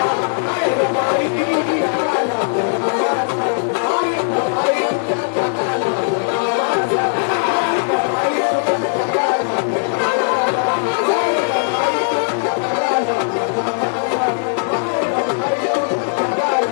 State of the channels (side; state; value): right; silent; digital silence